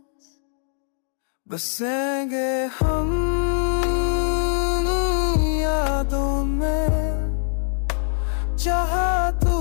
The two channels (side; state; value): right; silent; digital silence